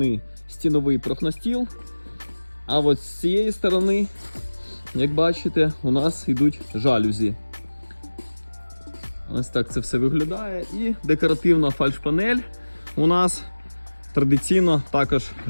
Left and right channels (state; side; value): inverted; both; correlation -1.00